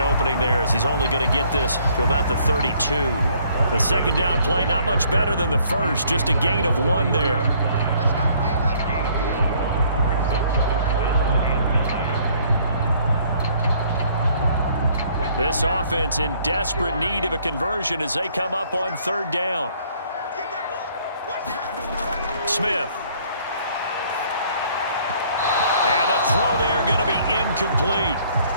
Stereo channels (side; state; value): both; inverted; correlation -0.62